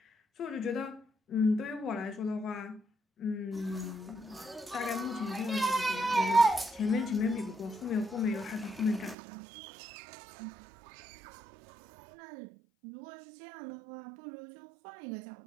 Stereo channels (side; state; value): left; drops out; at 9.2 s